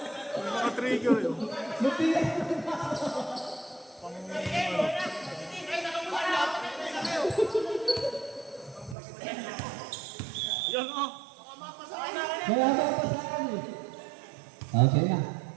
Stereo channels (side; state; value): left; drops out; at 9.0 s